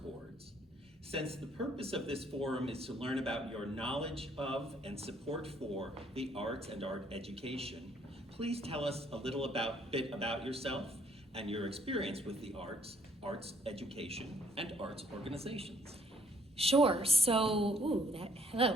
Since the purpose of this forum is to learn about your knowledge of and support for the arts and art education, please tell us a little bit about yourself and your experience with the arts, arts education, and arts organizations. Sure. So,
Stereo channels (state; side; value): normal; both; correlation 0.63